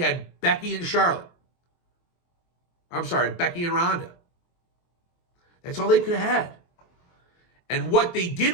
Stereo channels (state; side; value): late; right; 23 ms